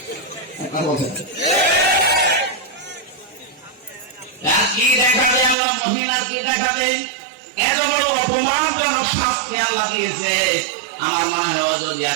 কি দেখাবে আল্লাহ মহিলার, কি দেখাবে? এত বড় অপমানজনক শাস্তি আল্লাহ দিয়েছে। আমার মনে হয় যদি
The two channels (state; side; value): drops out; left; at 5.6 s